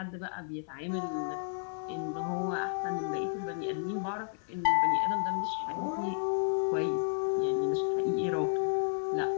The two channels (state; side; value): silent; right; 56 dB below the other